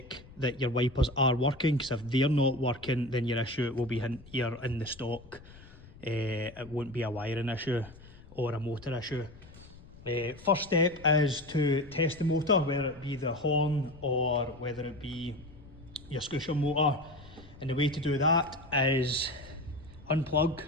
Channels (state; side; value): noise; left; rumble, 20 dB below the sound